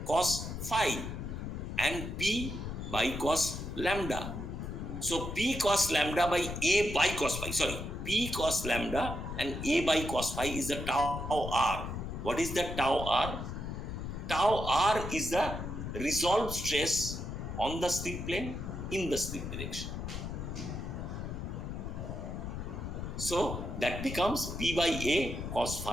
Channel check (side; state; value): left; noise; rumble, 6 dB below the sound